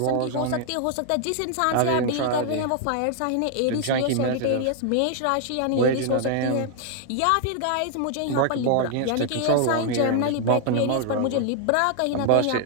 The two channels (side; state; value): both; different; correlation 0.00